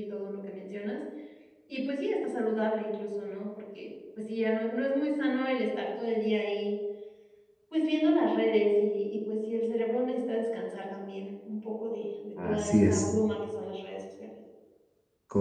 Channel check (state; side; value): identical; both; correlation 1.00